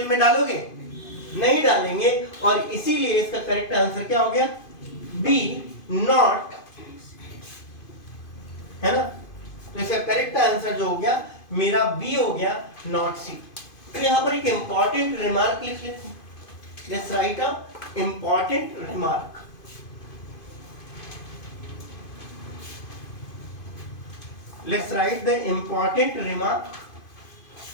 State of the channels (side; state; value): right; late; 2.5 ms